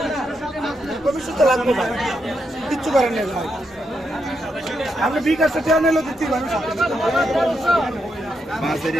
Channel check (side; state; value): both; normal; correlation 0.82